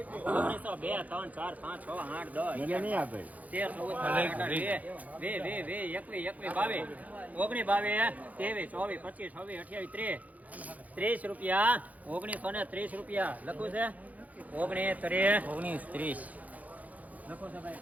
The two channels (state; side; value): late; left; 0.076 ms